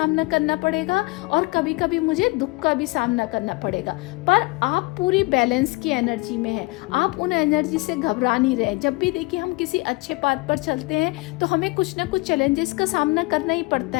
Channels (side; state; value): right; quieter; 25.0 dB